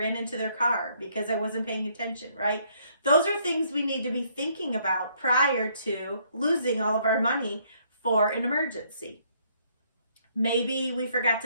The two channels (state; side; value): inverted; both; correlation -0.67